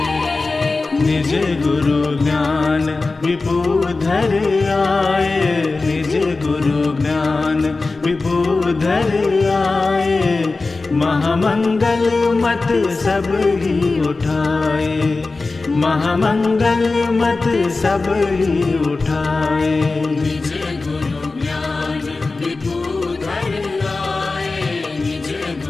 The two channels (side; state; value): right; quieter; 3.6 dB